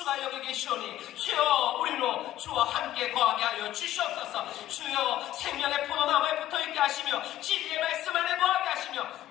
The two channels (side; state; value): right; quieter; 13.6 dB